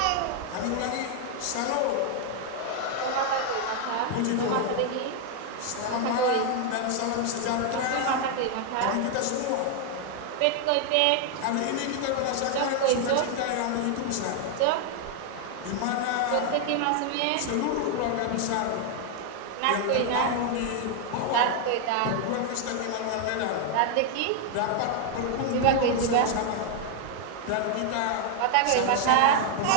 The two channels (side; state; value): both; different; correlation 0.00